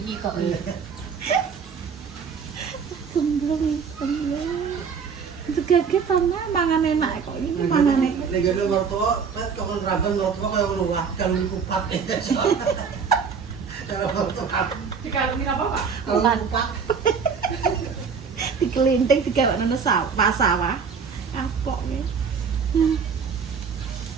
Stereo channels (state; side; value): quieter; left; 6.1 dB